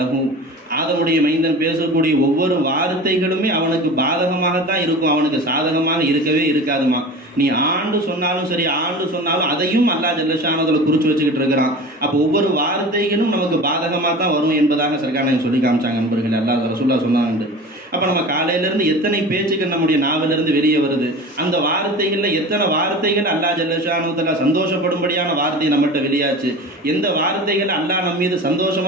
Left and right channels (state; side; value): normal; both; correlation 0.35